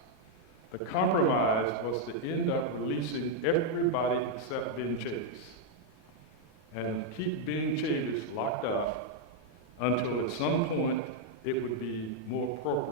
The compromise was to end up releasing everybody except Ben Chavis and keep Ben Chavis locked up until at some point it would be more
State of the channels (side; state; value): right; late; 38 ms